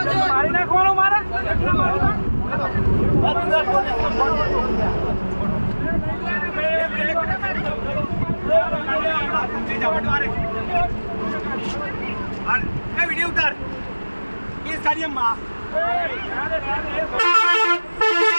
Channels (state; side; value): inverted; both; correlation -1.00